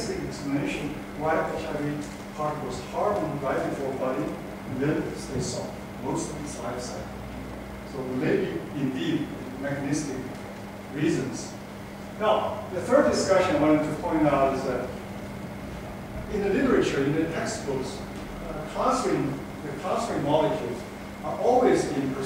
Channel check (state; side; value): identical; both; correlation 1.00